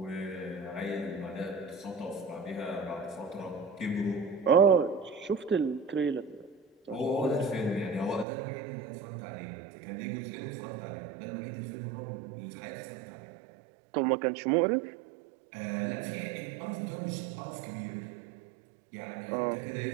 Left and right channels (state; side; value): drops out; left; at 8.2 s